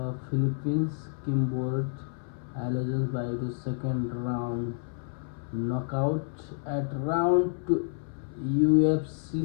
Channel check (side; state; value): right; silent; 58 dB below the other